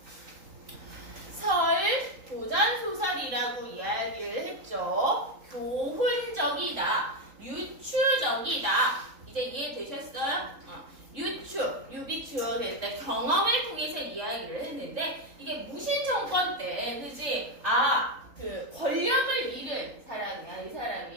설 도전소설이라고 이야기를 했죠. 교훈적이다, 유추적이다. 이제 이해되셨어요? 유비추어 될 때 경험을 통해서 이야기를 했는데 이게 무신정권 때, 그지? 그 권력을 잃은 사람이야, 이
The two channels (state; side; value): late; left; 3.8 ms